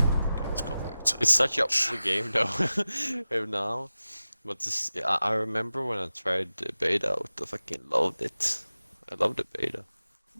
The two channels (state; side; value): inverted; both; correlation -0.95